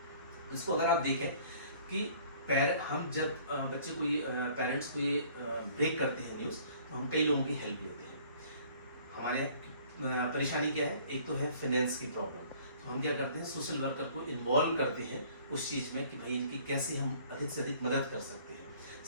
इसको अगर आप देखें कि हम जब बच्चे को पेरेंट्स को ये ब्रेक करते हैं न्यूज़, तो हम कई लोगों की हेल्प लेते हैं। हमारे परेशानी क्या है, एक तो है फाइनेंस की प्रॉब्लम, तो हम क्या करते हैं, सोशल वर्कर को इन्वॉल्व करते हैं उस चीज़ में कि भाई इनकी कैसे हम अधिक से अधिक मदद कर सकते हैं।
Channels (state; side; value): inverted; both; correlation -0.54